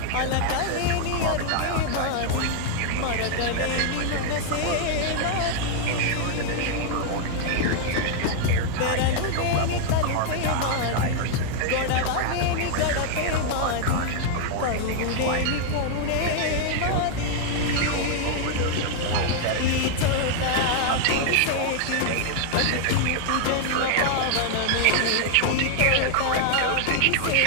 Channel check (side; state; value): both; different; correlation 0.00